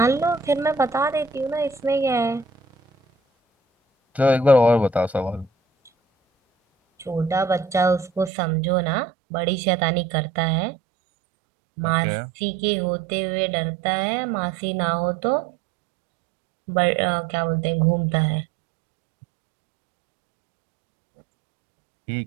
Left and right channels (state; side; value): drops out; left; at 8.3 s